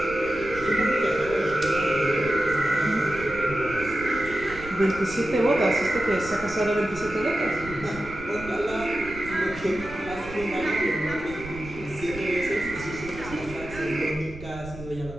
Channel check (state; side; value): noise; right; rumble, 14 dB below the sound